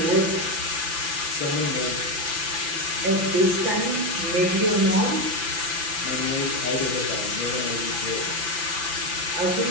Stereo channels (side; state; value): left; late; 5.9 ms